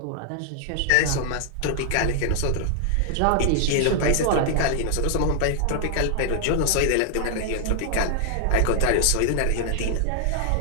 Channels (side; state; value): both; different; correlation 0.00